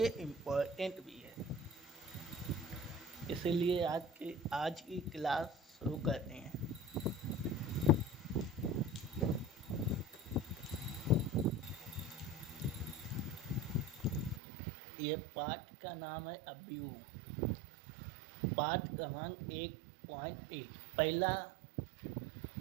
इम्पोर्टेंट भी है। इसीलिए आज की क्लास शुरू करते हैं। ये पाठ का नाम है अवयव। पाठ क्रमांक 1.1 पहला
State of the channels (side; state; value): left; drops out; at 14.4 s